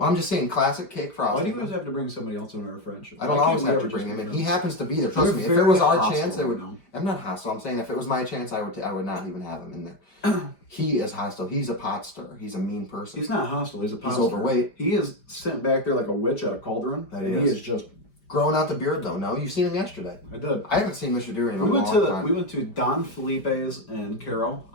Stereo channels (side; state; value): right; late; 5.0 ms